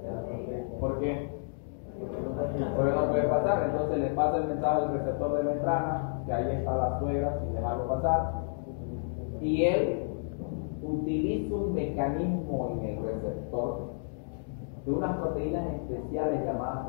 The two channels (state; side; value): silent; right; digital silence